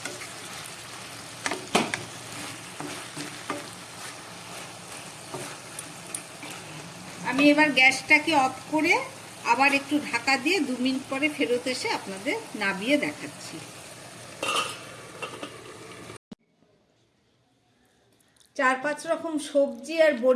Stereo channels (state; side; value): identical; both; correlation 1.00